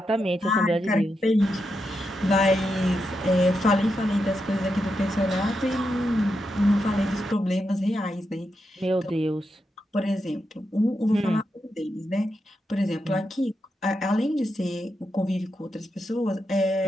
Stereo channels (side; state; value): both; normal; correlation 0.85